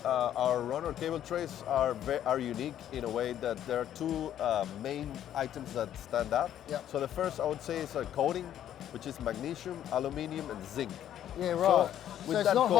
our runner cable trays are unique in a way that there are two main items that stand out. So the first, I would say, is a coating, which is magnesium, aluminium, and zinc. Yeah, right. So with that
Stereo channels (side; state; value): right; quieter; 10.9 dB